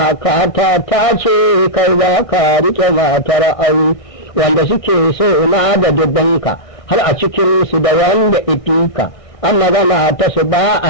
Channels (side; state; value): right; late; 1.6 ms